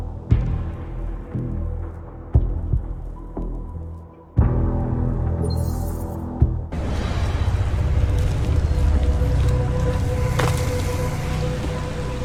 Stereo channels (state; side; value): identical; both; correlation 1.00